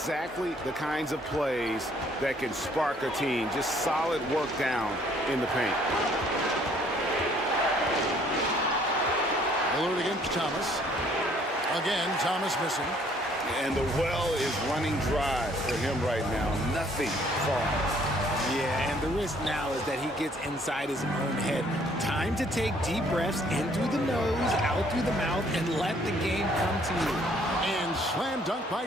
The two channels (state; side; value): normal; both; correlation 0.62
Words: the kinds of plays that can spark a team. Just solid work down in the paint. Lillard against Thomas. Again, Thomas missing. And the well is running dry for him right now. Nothing falls. Yeah, and the risk now is that he gets inside his own head. Time to take deep breaths in through the nose, out through the mouth, and let the game come to you. And slam dunk by